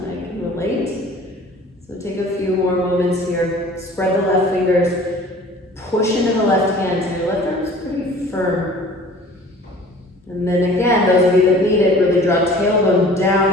I can relate. So take a few more moments here. Spread the left fingers, push into the left hand, so your left arm is pretty firm. And then again, those of you that need it, really draw tailbone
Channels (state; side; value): normal; both; correlation 0.47